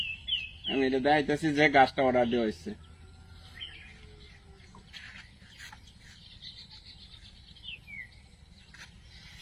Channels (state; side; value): identical; both; correlation 1.00